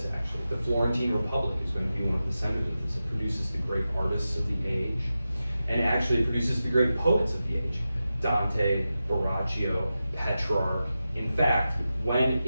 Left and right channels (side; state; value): both; inverted; correlation -0.92